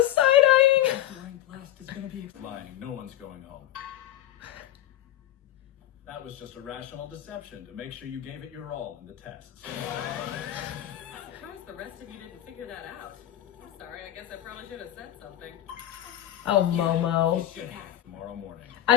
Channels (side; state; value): right; quieter; 12.7 dB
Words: side-eyeing. Lying, no one's going home. That was just a rational deception to make sure you gave it your all in the tests. I'm surprised the rest of you didn't figure that out. Sorry, I guess I probably should have said something. Oh, Momo. Tomorrow morning.